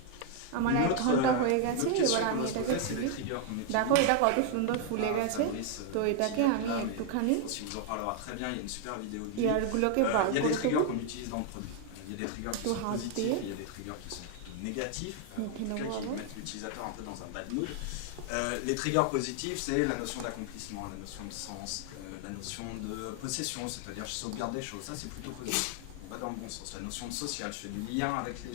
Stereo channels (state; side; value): different; both; correlation 0.00